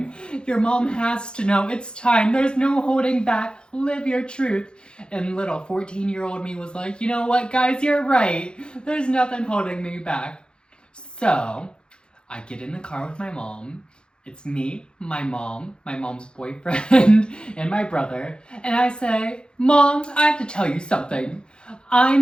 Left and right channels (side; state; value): right; late; 0.051 ms